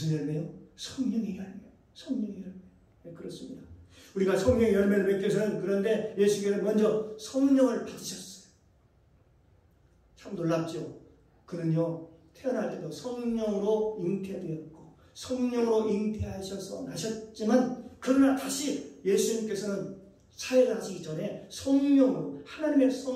열매요? 성령의 열매. 성령의 열매. 네, 그렇습니다. 우리가 성령의 열매를 맺기 위해서는, 그런데 예수께서 먼저 성령을 받으셨어요. 참 놀랍죠? 그는요, 태어날 때도 성령으로 잉태되었고 성령으로 잉태하셔서 나셨지만, 그러나 다시 예수님께서는 사회를 하시기 전에 성령으로, 하나님의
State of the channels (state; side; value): identical; both; correlation 1.00